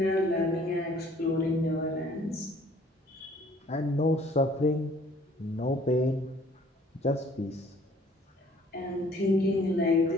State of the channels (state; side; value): normal; both; correlation 0.57